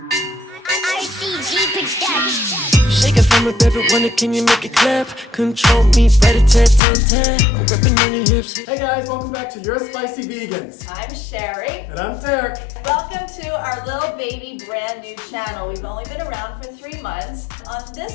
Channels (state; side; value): drops out; right; at 6.8 s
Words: it from a baby, wonder can you make it clap? Control me, rat-a-tat-tat-tat. I'm grabbing on your hips. Hey guys, welcome back to Your Spicy Vegans. I'm Sheri. And I'm Derek. Welcome to our little baby brand new channel. We've only been around for 3 months. On